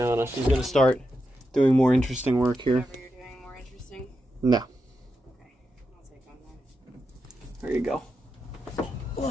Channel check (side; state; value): both; normal; correlation 0.87